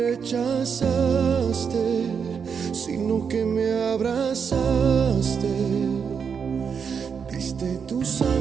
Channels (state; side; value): quieter; left; 6.5 dB